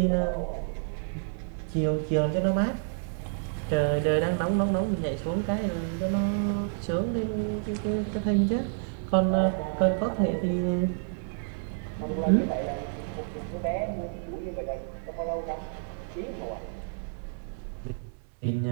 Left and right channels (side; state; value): left; silent; 58 dB below the other